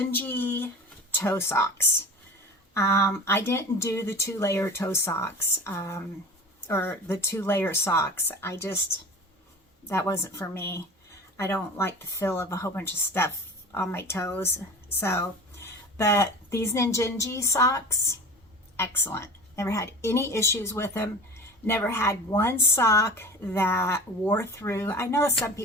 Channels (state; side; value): normal; both; correlation 0.36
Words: toe socks. I didn't do the 2-layer toe socks, or the 2-layer socks. That wasn't for me. I don't like the feel of a whole bunch of stuff on my toes. So, but these Ninjinji socks, excellent. Never had any issues with them. Never had one sock that wore through. I know some